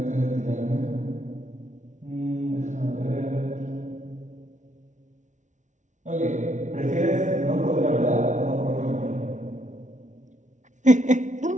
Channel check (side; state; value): left; late; 0.36 ms